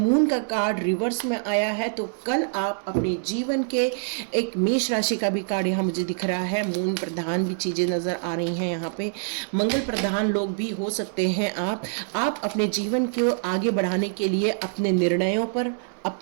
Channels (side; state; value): left; silent; 60 dB below the other